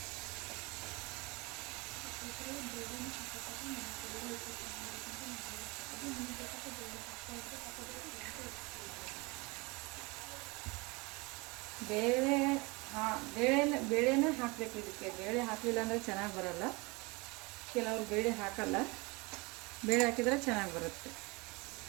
ಬೇಳೆನ ಹಾಕಬೇಕು. ಇದಕ್ಕೆ ಬೇಳೆ ಹಾಕಲಿಲ್ಲ ಅಂದರೆ ಚೆನ್ನಾಗಿ ಬರಲ್ಲ. ಕೆಲವರು ಬೇಳೆ ಹಾಕಲ್ಲ, ಬೇಳೆ ಹಾಕಿದರೆ ಚೆನ್ನಾಗಿ ಬರುತ್ತೆ.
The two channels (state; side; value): quieter; left; 26.4 dB